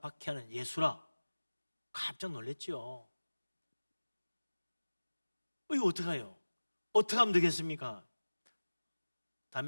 예수라. 깜짝 놀랐죠. 이거 어떡해요? 어떻게 하면 되겠습니까?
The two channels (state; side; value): inverted; both; correlation -1.00